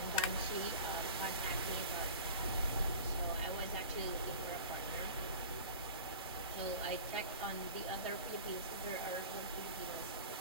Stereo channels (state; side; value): inverted; both; correlation -0.39